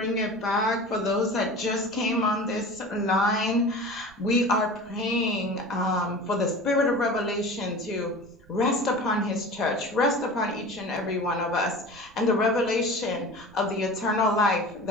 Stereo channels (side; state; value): right; noise; rumble, 26 dB below the sound